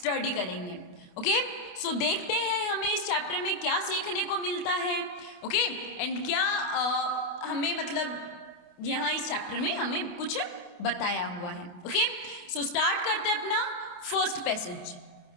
करेंगे. ओके, सो देखते हैं हमें इस चैप्टर में क्या सीखने को मिलता है. ओके, एंड क्या हमें मतलब यहाँ इस चैप्टर में हमें कुछ बताया हुआ है. ओके, सो स्टार्ट करते हैं अपना first passage.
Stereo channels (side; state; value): right; late; 28 ms